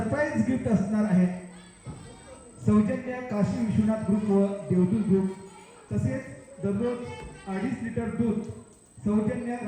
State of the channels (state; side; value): identical; both; correlation 1.00